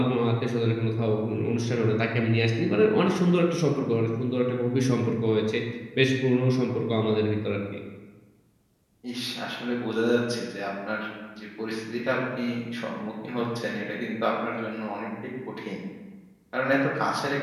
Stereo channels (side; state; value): both; identical; correlation 1.00